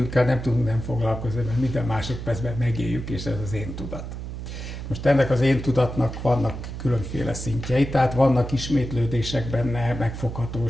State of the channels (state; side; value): noise; right; hum, 8 dB below the sound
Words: nem tudunk nem foglalkozni, mert minden másodpercben megéljük, és ez az én tudat. Most ennek az én tudatnak vannak különféle szintjei, tehát vannak ismétlődések benne,